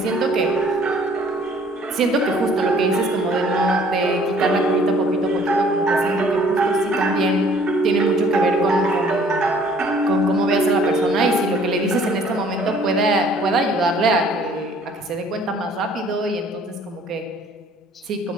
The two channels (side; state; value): both; normal; correlation 0.57